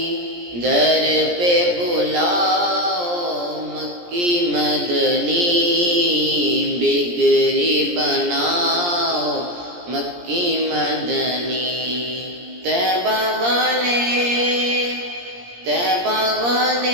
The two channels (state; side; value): late; left; 17 ms